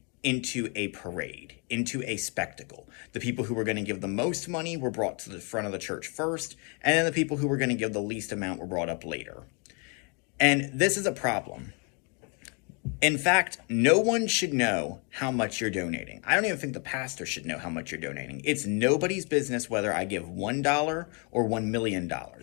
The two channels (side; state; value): right; quieter; 35.3 dB